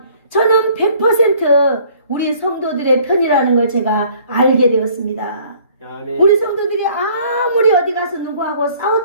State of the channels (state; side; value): inverted; both; correlation -0.57